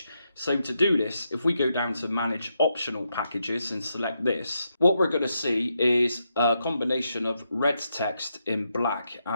So to do this, if we go down to Manage Optional Packages and select this, what we're going to see is a combination of red text in black.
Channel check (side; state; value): both; inverted; correlation -0.82